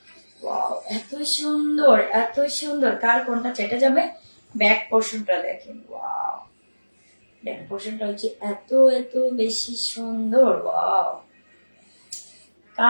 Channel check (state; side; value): inverted; both; correlation -1.00